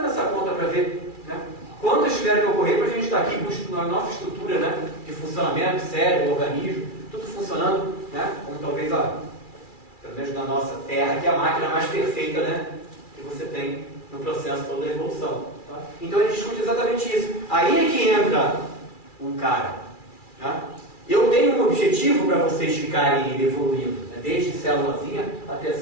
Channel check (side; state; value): right; late; 2.3 ms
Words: essa conta para ver, né, quantas tiveram que ocorrer para a gente estar aqui com a nossa estrutura, né, de funcionamento, cérebro, organismo, tudo funcionando, né, como talvez pelo menos na nossa Terra, que é a máquina mais perfeita, né, que você tem no processo todo da evolução. Tá? Então a gente discute exatamente isso. Aí é que entra um cara. Tá? Eu tenho um objetivo para vocês ficarem evoluindo, né? Desde célulazinha até